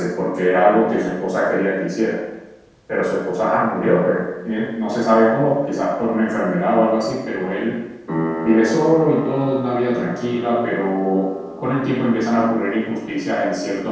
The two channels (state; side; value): identical; both; correlation 1.00